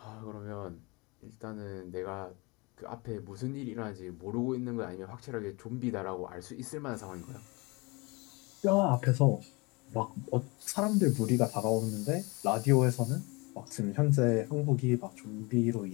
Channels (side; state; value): right; quieter; 27.0 dB